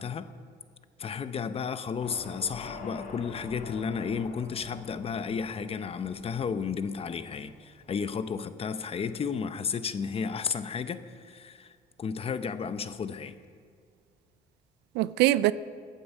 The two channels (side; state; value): both; normal; correlation 0.29